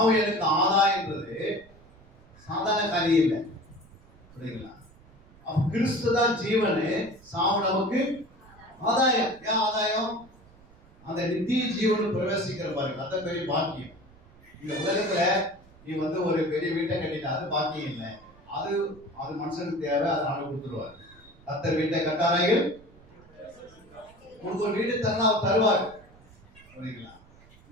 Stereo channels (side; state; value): right; noise; rumble, 25 dB below the sound